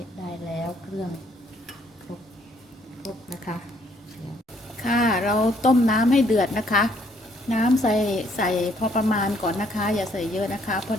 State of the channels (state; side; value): normal; both; correlation 0.66